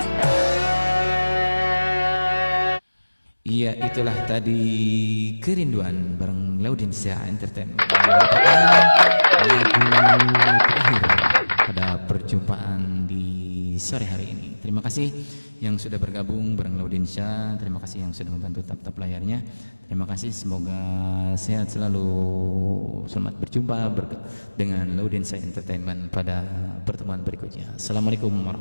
Ya, itulah tadi Kerinduan bareng Laudinsia Entertainment, merupakan lagu terakhir pada perjumpaan di sore hari ini. Terima kasih yang sudah bergabung bareng Laudinsia, terima kasih yang sudah membantu tap-tap layarnya. Terima kasih, semoga sehat selalu. Selamat berjumpa dengan Laudinsia Entertainment pada pertemuan berikutnya. Assalamualaikum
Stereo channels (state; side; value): inverted; both; correlation -1.00